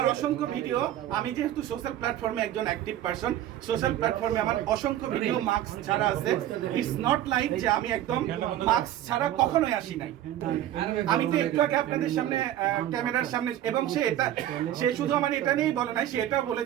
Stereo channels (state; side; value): quieter; left; 12.3 dB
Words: অসংখ্য ভিডিও, আমি যেহেতু সোশ্যাল প্ল্যাটফর্মে একজন অ্যাক্টিভ পারসন, সোশ্যাল প্ল্যাটফর্মে আমার অসংখ্য ভিডিও মাস্ক ছাড়া আছে। ইটস নট লাইক যে আমি একদম মাস্ক ছাড়া কখনোই আসি নাই। আমি তো একটু আগে আপনাদের সামনে ক্যামেরার সামনে, এবং সে শুধু আমার এটা নিয়েই বলে নাই, সে এটাও